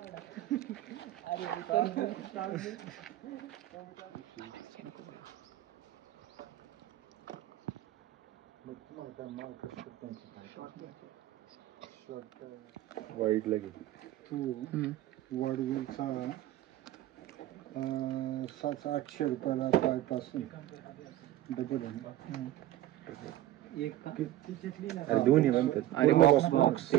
वाईट लागेल तू वडवीलचा 700-800 रुपयाला पायपासून डबल दोन्ही म्हणतात. आणि बॉक्स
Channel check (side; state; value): left; quieter; 14.2 dB